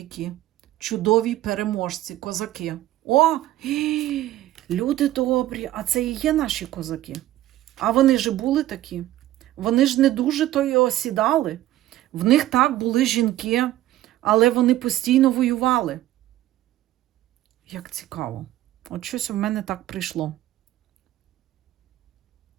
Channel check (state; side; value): quieter; left; 14.4 dB